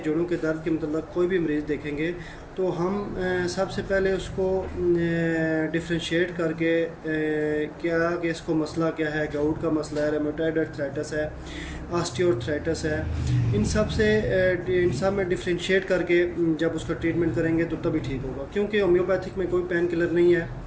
के दर्द के मतलब कोई भी मरीज़ देखेंगे तो हम सबसे पहले उसको डिफ्रेंशिएट करके क्या कि इसको मसला क्या है, गाउट का मसला है, रेमेटॉइड अर्थराइटिस है, ऑस्टियोआर्थराइटिस है। इन सब में डिफ्रेंशिएट करके जब उसका ट्रीटमेंट करेंगे तो तभी ठीक होगा, क्योंकि होम्योपैथिक में कोई पेन किलर नहीं है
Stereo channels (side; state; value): both; identical; correlation 1.00